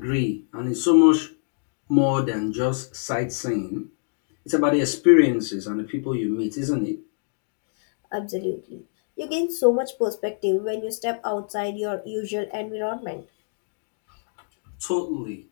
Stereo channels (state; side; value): silent; right; digital silence